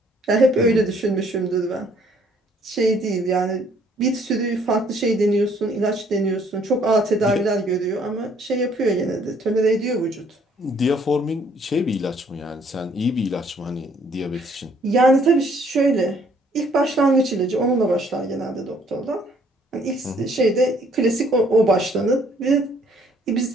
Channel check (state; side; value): normal; both; correlation 0.63